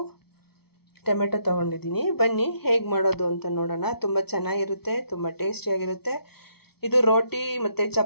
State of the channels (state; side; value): late; right; 0.96 ms